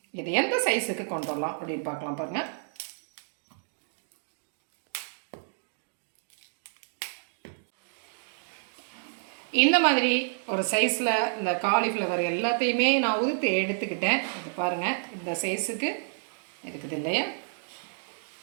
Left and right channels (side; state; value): left; silent; digital silence